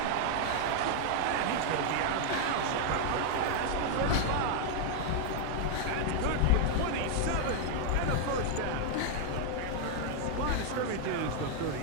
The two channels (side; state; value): both; different; correlation 0.00